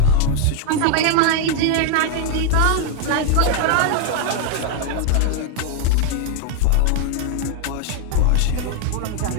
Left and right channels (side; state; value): both; different; correlation 0.00